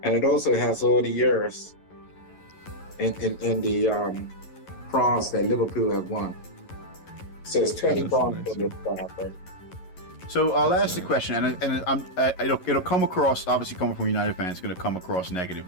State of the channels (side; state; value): right; late; 11 ms